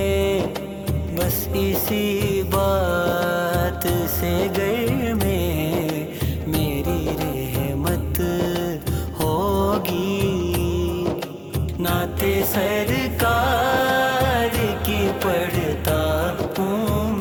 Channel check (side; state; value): both; identical; correlation 1.00